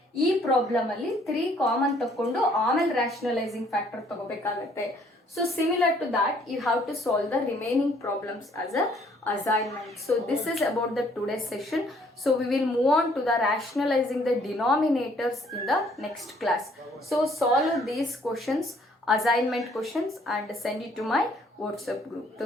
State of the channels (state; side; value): normal; both; correlation 0.63